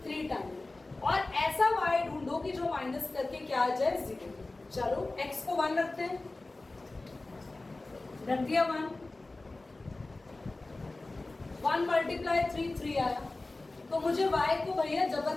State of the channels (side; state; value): right; quieter; 3.1 dB